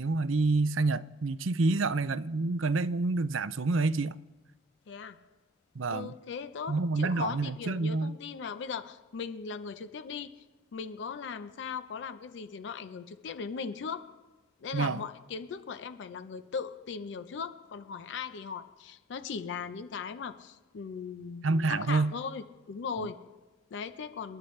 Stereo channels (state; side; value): normal; both; correlation 0.53